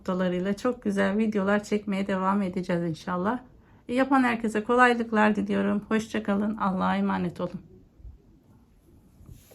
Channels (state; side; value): identical; both; correlation 1.00